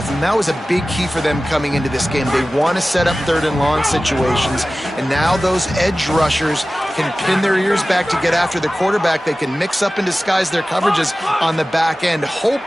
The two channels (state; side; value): normal; both; correlation 0.96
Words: and that was a big key for them coming into this game. They want to set up third and long situations, and now those edge rushers can pin their ears back to get after the quarterback. They can mix up and disguise their coverages on the back end,